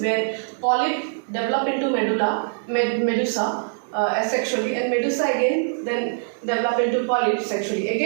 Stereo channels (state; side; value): silent; left; digital silence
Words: where polyp develop into medusa, asexually, and medusa again then develop into polyp sexually.